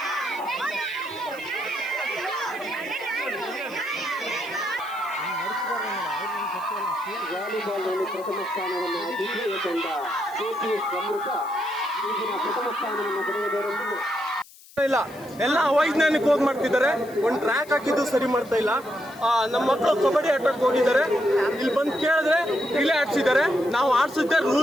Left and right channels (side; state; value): left; noise; hiss, 22 dB below the sound